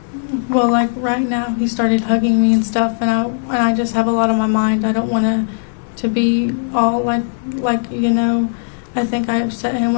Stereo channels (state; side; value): silent; right; digital silence